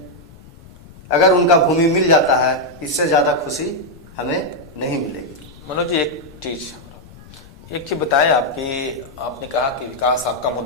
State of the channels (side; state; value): left; noise; rumble, 21 dB below the sound